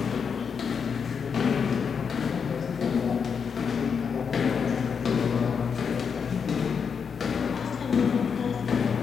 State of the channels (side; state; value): right; quieter; 6.4 dB